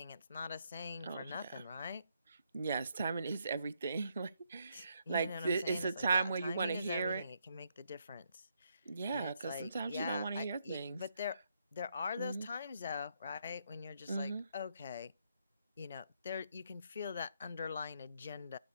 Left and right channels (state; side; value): inverted; both; correlation -0.76